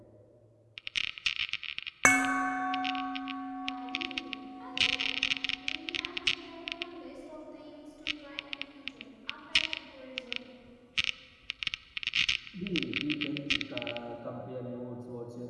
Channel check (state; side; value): identical; both; correlation 1.00